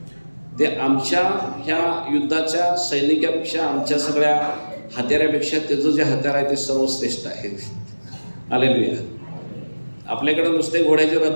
ते आमच्या ह्या युद्धाच्या सैनिकापेक्षा, आमच्या सगळ्या हत्यारापेक्षा त्याचं जे हत्यार आहे ते सर्वश्रेष्ठ आहे. हालेलुया. आपल्याकडे नुसते घोड्याचे रथ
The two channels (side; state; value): both; inverted; correlation -1.00